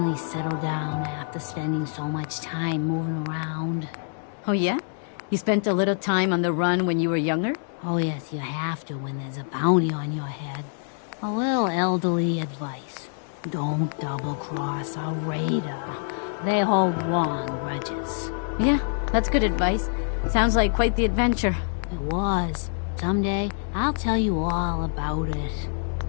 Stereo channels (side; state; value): right; silent; digital silence